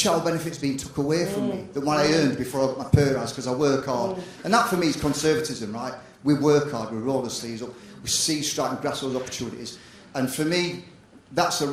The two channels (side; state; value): both; identical; correlation 1.00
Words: benefits being took away from me than what I earned before I got my pay rise, because I work hard. And that for me is conservatism, right? We work hard, we roll the sleeves up, we see strike and grasp those opportunities. And for me, that's a